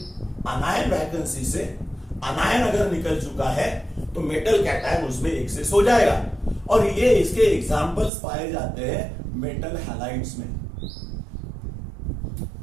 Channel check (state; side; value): drops out; left; at 8.1 s